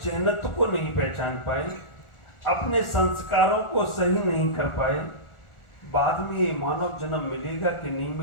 जहनत्व को नहीं पहचान पाए, अपने संस्कारों को सही नहीं कर पाए, बाद में ये मानव जन्म मिलेगा कि नहीं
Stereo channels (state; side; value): late; right; 1.4 ms